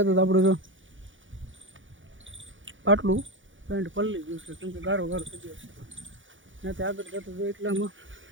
આપણે જો પાટલું પેન્ટ પલળી ગયું છે, કેમ કે ગારો થઈ ગયો છે. ત્યાંથી આગળ જતા જો એટલામાં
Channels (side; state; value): left; late; 0.56 ms